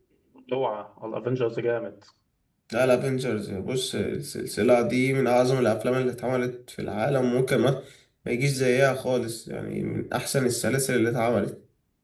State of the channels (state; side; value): identical; both; correlation 1.00